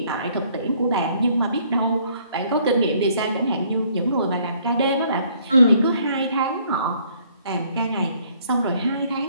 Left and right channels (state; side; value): inverted; both; correlation -0.63